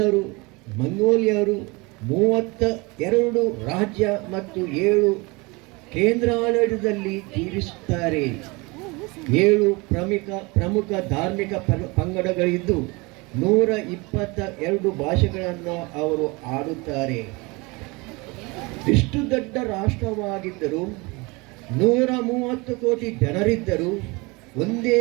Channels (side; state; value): left; quieter; 25.8 dB